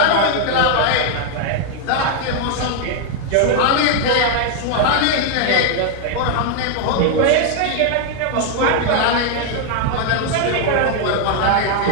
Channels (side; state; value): both; different; correlation 0.00